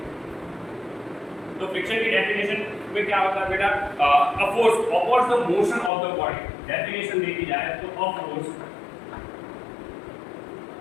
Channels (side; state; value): right; drops out; at 5.9 s